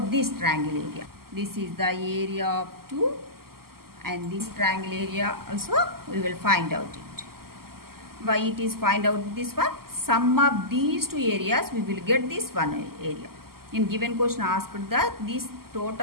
this triangle area? This is the area of 2. And this triangle area also we will find out it. Why it is find out this one? Sum of these two areas we will get this one area. In given question asked that this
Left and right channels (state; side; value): late; left; 0.93 ms